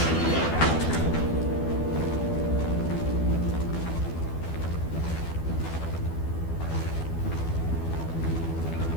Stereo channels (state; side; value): late; right; 12 ms